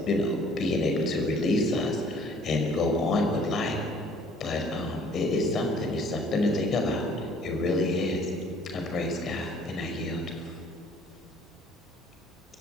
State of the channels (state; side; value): normal; both; correlation 0.56